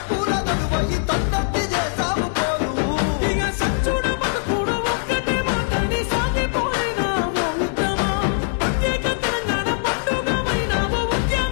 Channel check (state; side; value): silent; right; 62 dB below the other